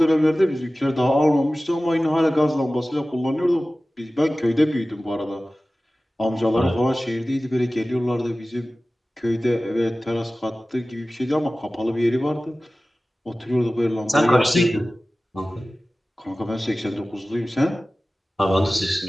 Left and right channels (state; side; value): normal; both; correlation 0.97